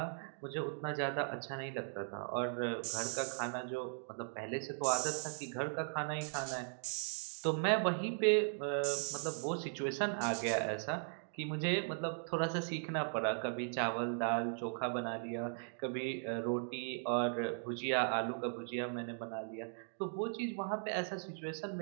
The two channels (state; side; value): silent; left; digital silence